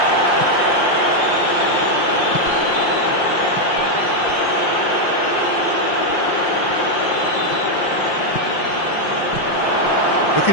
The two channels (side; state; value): right; late; 5.7 ms